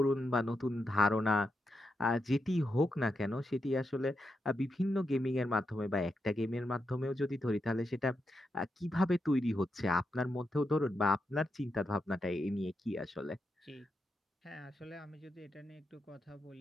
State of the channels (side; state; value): both; normal; correlation 0.85